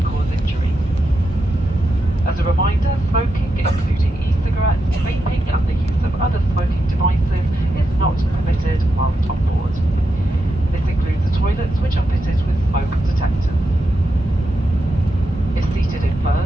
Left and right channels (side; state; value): both; normal; correlation 0.86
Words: cause injury. As a reminder, smoking, including e-cigarettes, vaping and the use of other smoking devices is not permitted whilst on board. This includes the toilets, which are fitted with smoke detectors. If seated in